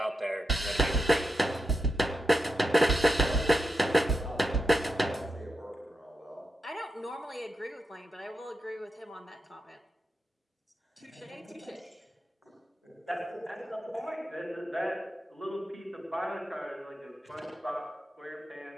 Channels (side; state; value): both; normal; correlation 0.86